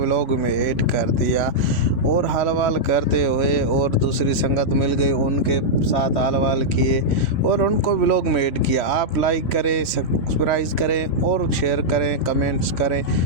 में ऐड कर दिया और हाल करते हुए और दूसरी संगत मिल गई, उनके साथ हाल किए और उनको व्लॉग में ऐड किया। आप लाइक करें, सब्सक्राइब करें और शेयर करें, कमेंट्स करें।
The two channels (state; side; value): late; right; 3.5 ms